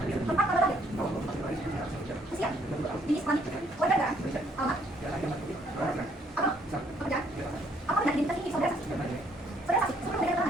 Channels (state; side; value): normal; both; correlation 0.66